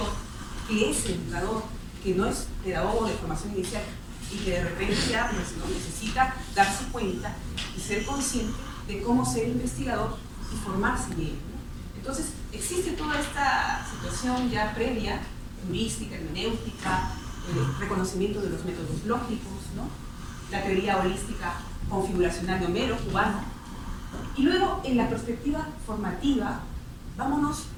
que es educador, que no es pedagogo de formación inicial y que de repente ya pues, ¿no? necesita darse cuenta y ser consciente de cómo ser investigador y formarse en ello, ¿no? Entonces, existe toda esta situación ya previa, heurística, hermenéutica, reconocimiento de los métodos lógicos, ¿no? La teoría holística configuracional de Homero, cubano. Y luego, en la perspectiva formativa, vámonos,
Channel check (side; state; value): both; identical; correlation 1.00